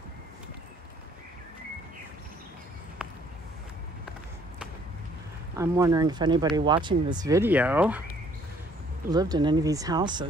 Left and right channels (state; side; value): normal; both; correlation 0.62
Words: I'm wondering if anybody watching this video lived in any of these